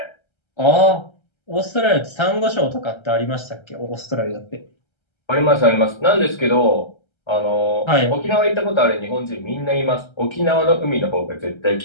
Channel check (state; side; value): late; right; 1.3 ms